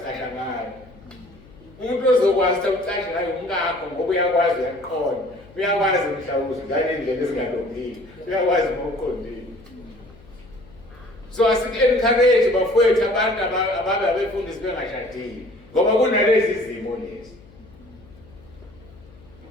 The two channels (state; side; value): noise; left; hum, 24 dB below the sound